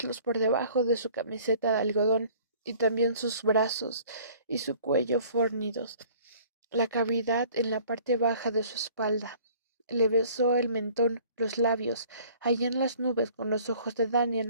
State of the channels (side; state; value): both; inverted; correlation -0.52